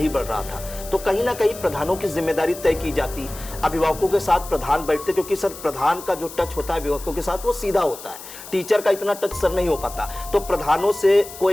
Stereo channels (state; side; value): noise; left; hiss, 14 dB below the sound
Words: बढ़ रहा था तो कहीं ना कहीं प्रधानों की जिम्मेदारी तय की जाती, अभिभावकों के साथ प्रधान बैठते, क्योंकि सर प्रधान का जो टच होता है अभिभावकों के साथ वो सीधा होता है, टीचर का इतना टच सर नहीं हो पाता। तो प्रधानों से को